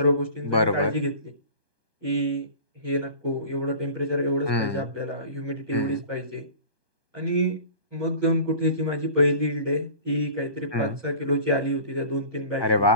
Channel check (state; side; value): late; right; 1.2 ms